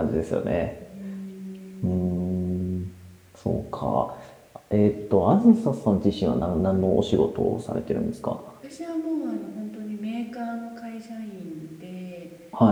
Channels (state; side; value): identical; both; correlation 1.00